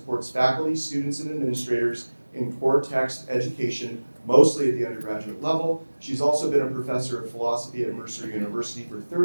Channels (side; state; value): both; inverted; correlation -1.00